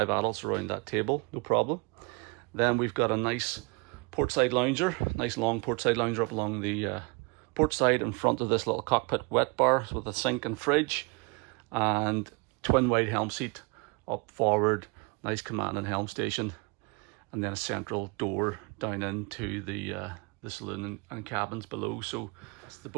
adults around that table, no problem. Then we've got a nice portside lounger, nice long portside lounger up along the port side in front of this little cockpit wet bar with a sink and fridge, and twin wide helm seat up forward, nice command and helm station, and then a central door down into the saloon and cabins below. So the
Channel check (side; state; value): left; quieter; 30.7 dB